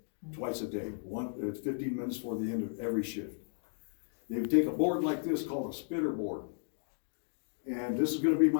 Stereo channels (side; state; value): right; silent; digital silence